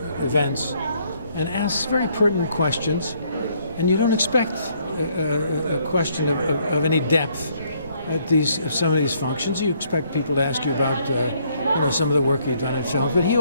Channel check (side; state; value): both; inverted; correlation -0.68